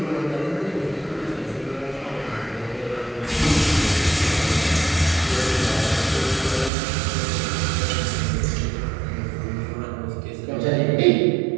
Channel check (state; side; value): drops out; left; at 6.7 s